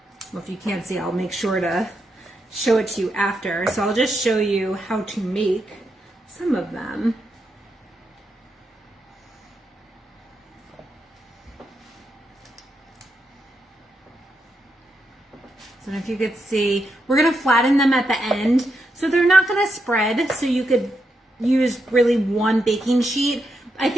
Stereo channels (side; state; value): both; normal; correlation 0.83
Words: well, if you can't see, I'll make sure to show it to you after. So I'll just show you how to make some of them. So if you could see, we're gonna flatten them at the end. So they're not gonna spread, so you could use really one baking sheet. I